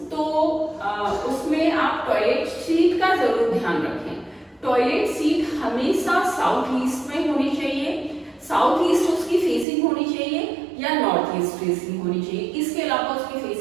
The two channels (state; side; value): drops out; left; at 9.7 s